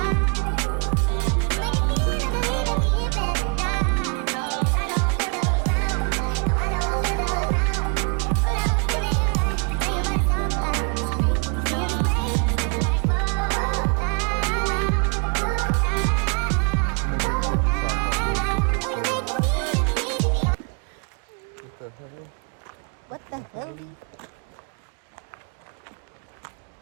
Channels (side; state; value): left; quieter; 37.6 dB